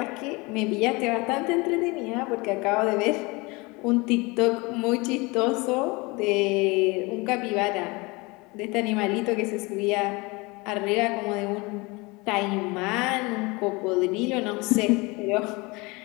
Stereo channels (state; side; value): quieter; right; 25.5 dB